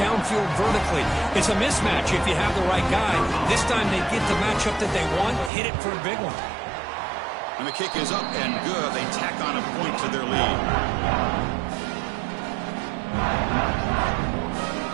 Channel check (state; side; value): drops out; left; at 5.5 s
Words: vertically. It's a mismatch if you have the right guy. This time they get the matchup that they want, hit it for a big one. And the kick is up and good. They tack on a point to their lead.